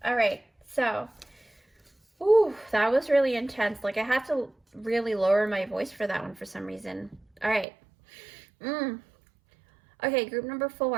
All right, so, ooh, that was really intense. Like, I have to really lower my voice for that one for some reason. All right. Okay, group number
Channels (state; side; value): drops out; left; at 7.7 s